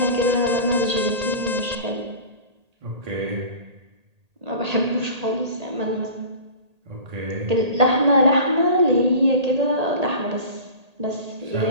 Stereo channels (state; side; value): late; left; 1.8 ms